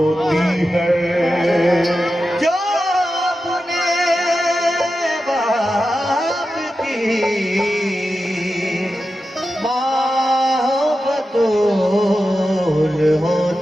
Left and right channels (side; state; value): both; normal; correlation 0.91